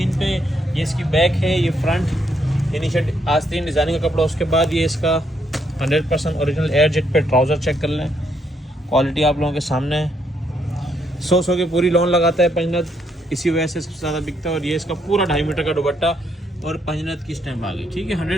पे। ये इसकी बैक है, ये फ्रंट, यानी शर्ट आस्तीन डिज़ाइनिंग का कपड़ा। उसके बाद ये इसका 100% ओरिजिनल एयर जेट पे ट्राउज़र चेक कर लें। क्वालिटी आप लोगों के सामने है। 100 की पूरी लोन लगाता है पंजनत, इसी वजह से सबसे ज़्यादा बिकता है। और ये इसका पूरा 2.5 मीटर का दुपट्टा और पंजनत की स्टैम्प आ गई, ठीक है।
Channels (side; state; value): both; normal; correlation 0.74